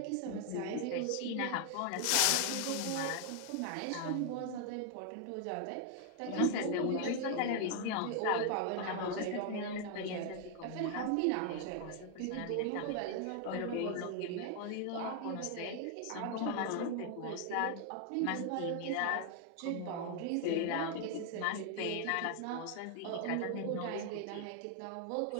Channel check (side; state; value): both; different; correlation 0.00